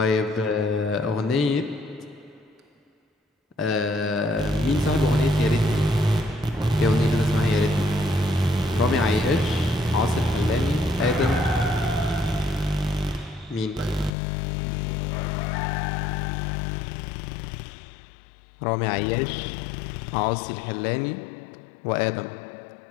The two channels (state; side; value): drops out; right; at 14.1 s